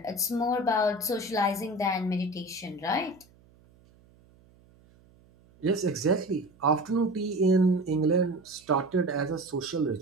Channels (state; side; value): noise; right; hum, 29 dB below the sound